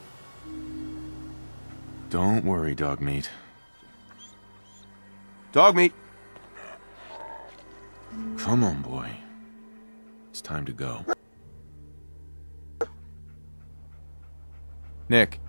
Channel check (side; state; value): both; inverted; correlation -1.00